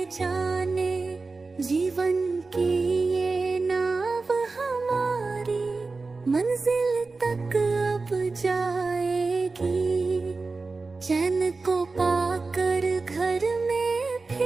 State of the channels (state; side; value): quieter; left; 3.9 dB